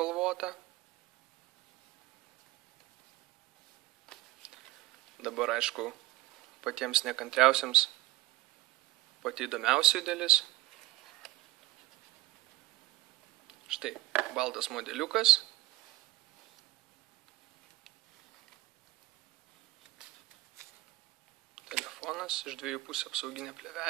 Dabar, aišku, patiems nekantriausiams pati įdomiausia dalis. Štai, baltas modeliukas. Telefonas, iš dviejų pusių apsauginė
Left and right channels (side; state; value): left; quieter; 17.4 dB